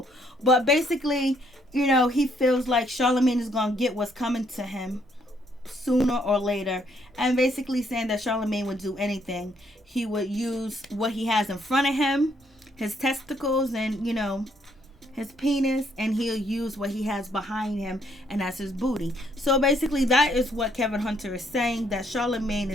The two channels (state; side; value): normal; both; correlation 0.70